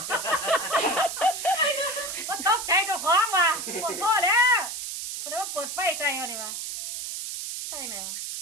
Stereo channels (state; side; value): noise; right; hiss, 5 dB below the sound